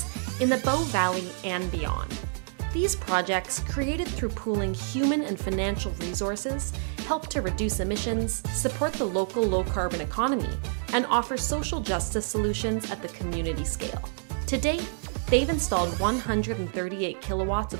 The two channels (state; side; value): silent; left; digital silence